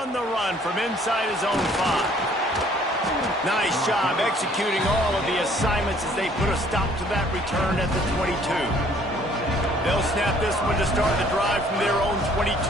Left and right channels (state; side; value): normal; both; correlation 0.59